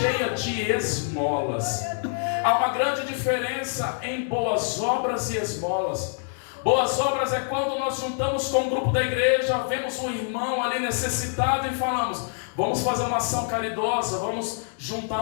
de esmolas. Há uma grande diferença em boas obras e esmolas. Boas obras é quando nós juntamos com um grupo da igreja, vemos um irmão ali necessitado e falamos: vamos fazer uma ação caridosa, vamos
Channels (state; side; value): silent; right; digital silence